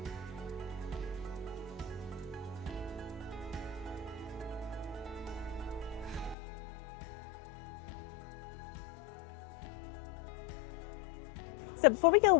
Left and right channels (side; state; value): right; drops out; at 6.4 s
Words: So before we go